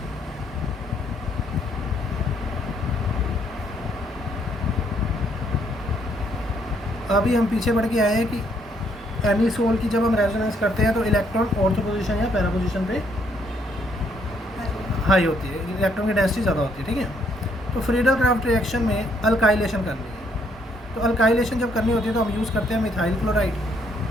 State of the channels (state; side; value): normal; both; correlation 0.70